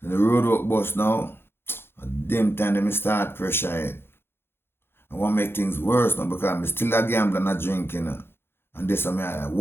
And the road work bus now, at them time they start pressure it. I want to make things worse now because I'm still a gambler and a drinking. And this I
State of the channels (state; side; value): late; right; 0.11 ms